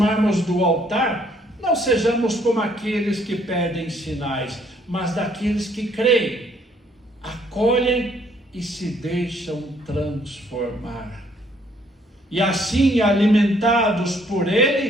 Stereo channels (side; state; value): both; normal; correlation 0.65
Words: do altar, não sejamos como aqueles que pedem sinais, mas daqueles que creem, acolhem e se deixam transformar. E assim, alimentados por